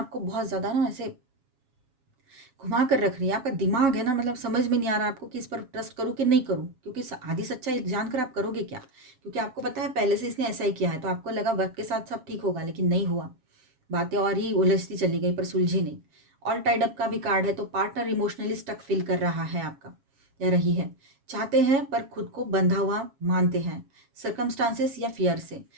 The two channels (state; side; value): late; left; 7.3 ms